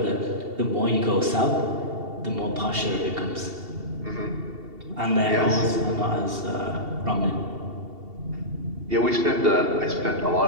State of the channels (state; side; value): late; left; 2.7 ms